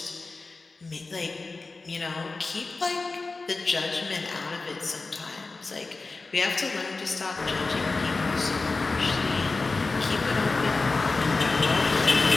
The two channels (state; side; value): quieter; right; 3.7 dB